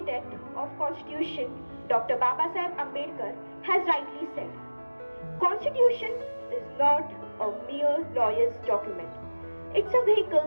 of Constitution, Dr. Babasaheb Ambedkar, has rightly said, Constitution is not a mere lawyer's document. It's a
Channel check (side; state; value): both; inverted; correlation -1.00